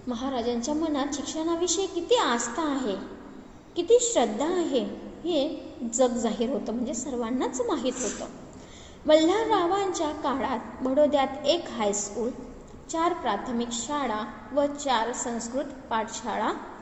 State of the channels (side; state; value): both; identical; correlation 1.00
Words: महाराजांच्या मनात शिक्षणाविषयी किती आस्था आहे, किती श्रद्धा आहे हे जग जाहीर होतं, म्हणजे सर्वांनाच माहीत होतं. मल्हाररावांच्या काळात बडोद्यात 1 हायस्कूल, 4 प्राथमिक शाळा व 4 संस्कृत पाठशाळा